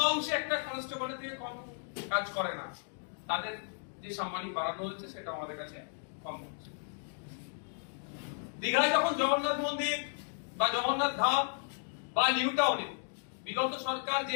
অংশে একটা কনস্টেবলের থেকে কম কাজ করে না, তাদের যে সাম্মানিক বাড়ানো হচ্ছে সেটা আমাদের কাছে কম হচ্ছে। দীঘায় যখন জগন্নাথ মন্দির বা জগন্নাথ ধাম বা নিউ টাউনে বিগত সরকার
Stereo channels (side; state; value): right; silent; 55 dB below the other